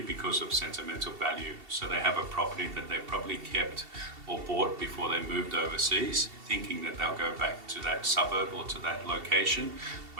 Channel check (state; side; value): late; left; 2.7 ms